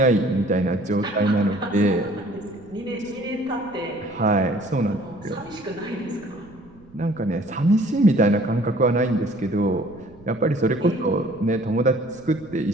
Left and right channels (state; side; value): noise; right; rumble, 25 dB below the sound